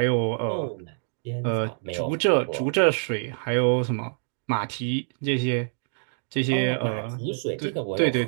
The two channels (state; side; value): silent; left; digital silence